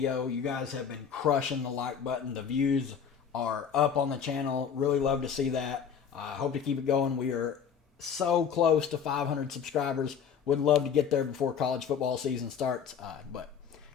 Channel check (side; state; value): right; quieter; 7.4 dB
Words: You guys have been crushing the like button. The views are up on the channel. Really love to see that. Hope to keep it going. We are so close to 500 subscribers. Would love to get there before college football season starts. But